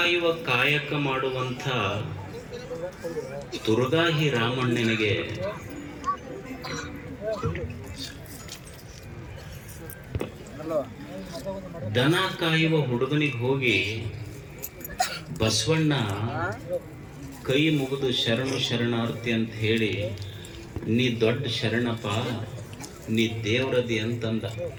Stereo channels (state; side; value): identical; both; correlation 1.00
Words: ಕಾಯಕ ಮಾಡುವಂಥ ತುರುಗಾಹಿ ರಾಮಣ್ಣನಿಗೆ ದನ ಕಾಯುವ ಹುಡುಗನಿಗೆ ಹೋಗಿ ಬಸವಣ್ಣ ಕೈ ಮುಗಿದು ಶರಣು ಶರಣಾರ್ಥಿ ಅಂತ ಹೇಳಿ, ನೀ ದೊಡ್ಡ ಶರಣಪ್ಪ, ನೀ ದೇವ್ರದಿ ಅಂತಂದ.